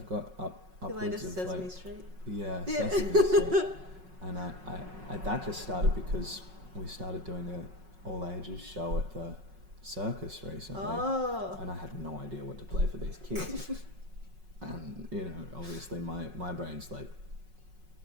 upwards your latest of Sesame like, Street. Yeah, Sesame Street. And that just started because we started doing a all ages show at the circus recently, and I had no idea what to play for these kids. And you know, obviously my brain's like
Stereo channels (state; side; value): late; left; 5.4 ms